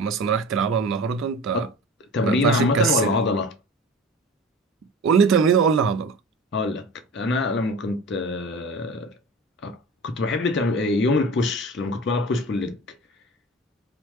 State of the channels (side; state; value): both; normal; correlation 0.36